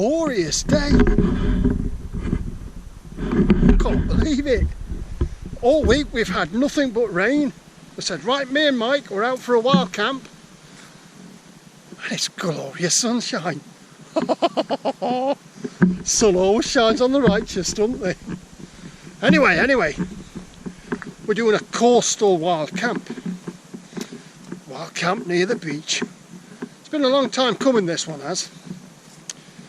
day. Can't believe it. All week we've had nothing but rain. I said, right, me and Mike, we're out for a wild camp. And it's glorious sunshine. Sun always shines on the righteous, doesn't they? Anyway, we're doing a coastal wild camp. Wild camp near the beach. It's been a long time coming, this one has.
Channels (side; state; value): both; identical; correlation 1.00